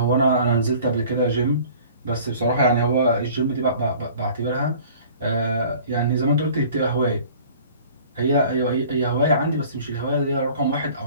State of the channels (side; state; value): both; inverted; correlation -0.48